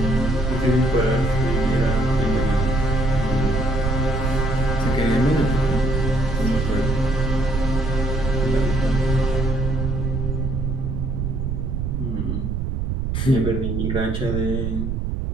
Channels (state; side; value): noise; right; rumble, 1 dB below the sound